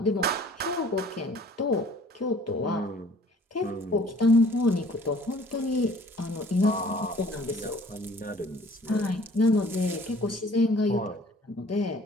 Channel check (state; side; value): normal; both; correlation 0.53